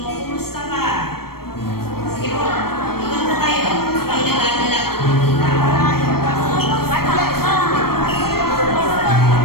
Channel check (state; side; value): late; right; 0.94 ms